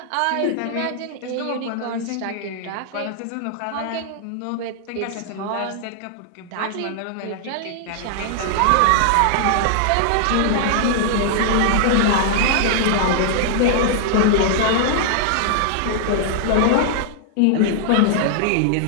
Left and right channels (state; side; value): different; both; correlation 0.00